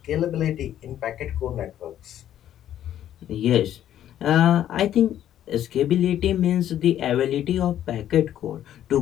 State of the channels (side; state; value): right; quieter; 11.3 dB